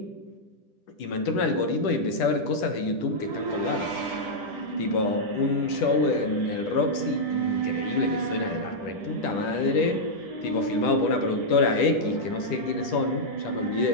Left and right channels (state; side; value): late; right; 10 ms